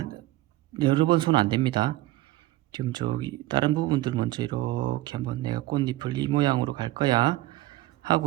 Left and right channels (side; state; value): left; quieter; 17.1 dB